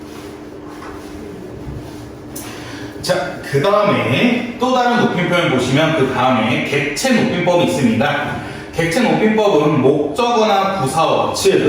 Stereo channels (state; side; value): identical; both; correlation 1.00